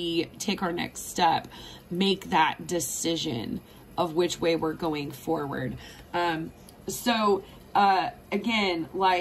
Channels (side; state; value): both; identical; correlation 1.00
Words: take our next step, make that decision of which way we're going forward. Again,